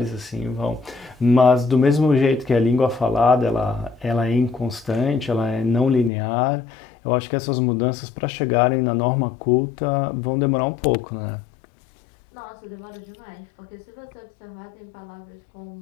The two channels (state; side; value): drops out; right; at 6.1 s